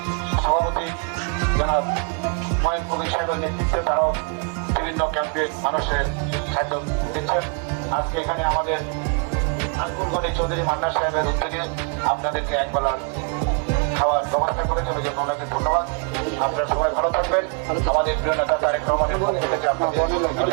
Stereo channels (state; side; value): quieter; left; 38.3 dB